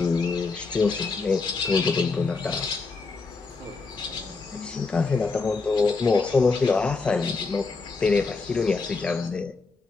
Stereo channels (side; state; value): right; quieter; 4.1 dB